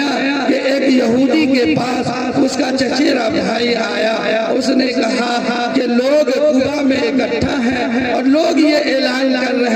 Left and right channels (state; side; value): identical; both; correlation 1.00